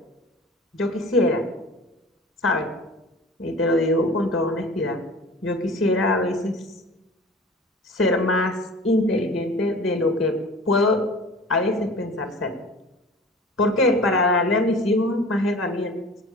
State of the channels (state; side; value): normal; both; correlation 0.41